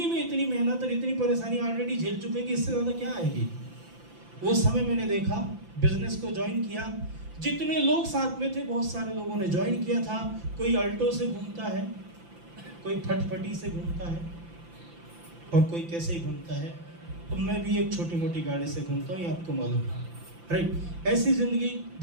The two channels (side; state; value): left; late; 5.9 ms